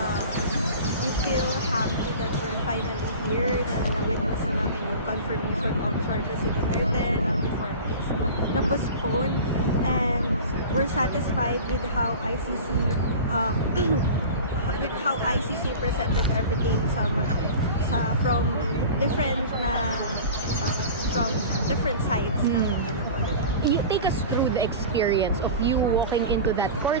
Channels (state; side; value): inverted; both; correlation -0.36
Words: We feel happy that we're finally here, na na-witness na namin yung confirmation of charges si Duterte na before is na-postpone, and we're satisfied with how ICC presented everything from different sides ng ano po. You take us through the experience of you walking into that